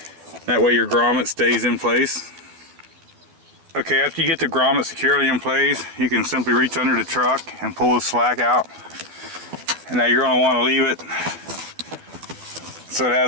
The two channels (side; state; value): left; late; 12 ms